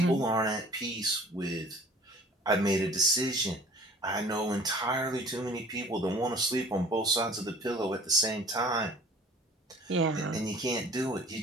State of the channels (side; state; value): both; normal; correlation 0.49